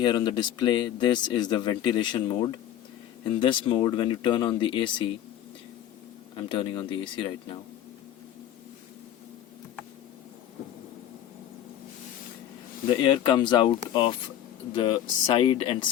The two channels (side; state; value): right; quieter; 11.3 dB